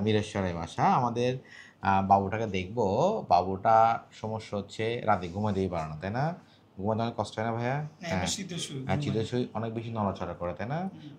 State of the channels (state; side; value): identical; both; correlation 1.00